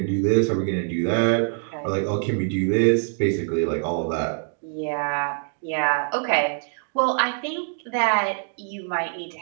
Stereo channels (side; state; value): left; silent; 56 dB below the other